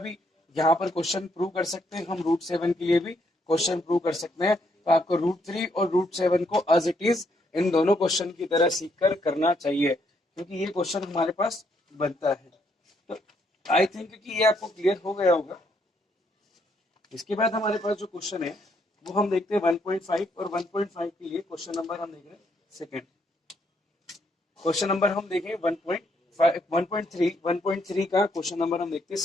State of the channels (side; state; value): both; normal; correlation 0.73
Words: यहाँ पर क्वेश्चन प्रूव कर सकते हैं. हम रूट 7 के लिए भी क्वेश्चन प्रूव कर सकते हैं. तो आपको रूट 3 और रूट 7 को एज इट इज इन दोनों क्वेश्चन की तरह सीखकर करना चाहिए, क्योंकि ये क्वेश्चन हमारे पास बनता है. तो आई थिंक कि ये आपको क्लियर हो गया होगा. इसके बाद हमारे पास जो क्वेश्चन है वो हम देखते हैं 1.5 और 1.5 के लिए क्वेश्चन नंबर हम देख रहे हैं सेकेंड. क्वेश्चन नंबर हम देखें 1.3 का क्वेश्चन नंबर हम देखते हैं